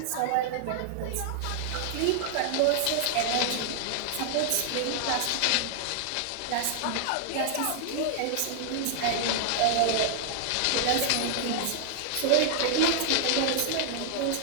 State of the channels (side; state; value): both; different; correlation -0.01